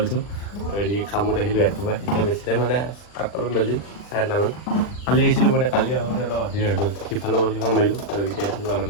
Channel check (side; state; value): right; late; 40 ms